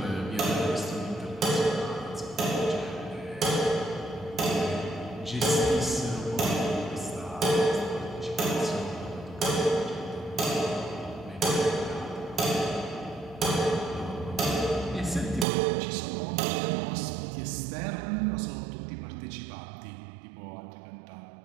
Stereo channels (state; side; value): drops out; left; at 15.5 s